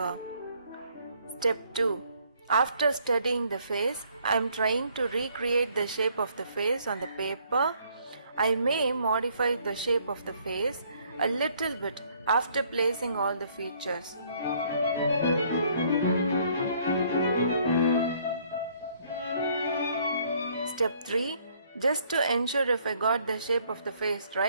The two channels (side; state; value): both; inverted; correlation -0.64